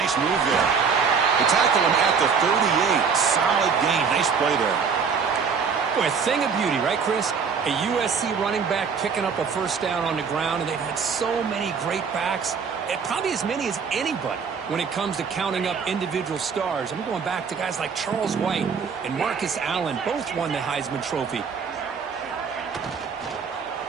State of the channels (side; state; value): left; quieter; 6.0 dB